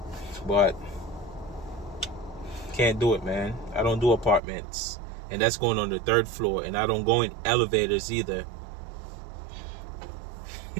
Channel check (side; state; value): left; drops out; at 4.4 s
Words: but can't do it, man. I don't do apartments, and that's going on the 3rd floor, and I don't go in elevators either.